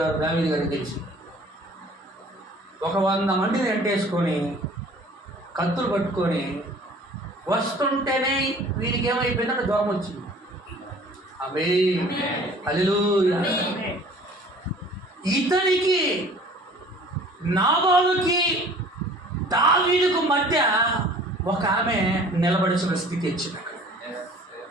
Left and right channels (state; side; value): normal; both; correlation 0.50